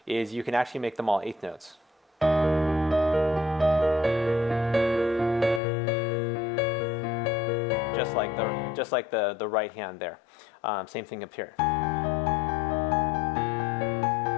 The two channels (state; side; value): drops out; right; at 5.6 s